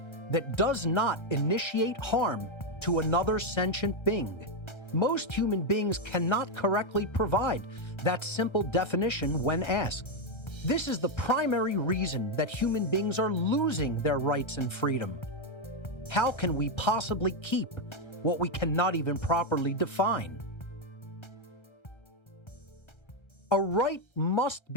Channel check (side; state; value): right; late; 1.3 ms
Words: that does not initiate harm to another sentient being. Most human beings cannot correctly provide that simple definition when asked. This is the primary reason that human beings are losing their rights and freedom. How can we possibly keep what we cannot even properly define? A right must